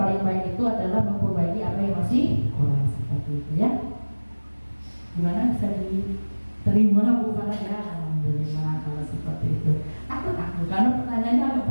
baik itu adalah memperbaiki apa yang masih kurang seperti itu ya. Gimana bisa diterima Bu Farah ya? Alhamdulillah kalau seperti itu. Aku karena pertanyaannya agak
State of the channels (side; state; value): both; inverted; correlation -1.00